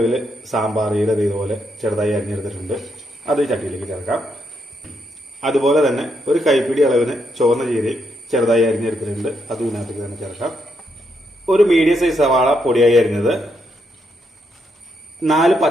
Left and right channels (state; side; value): normal; both; correlation 0.79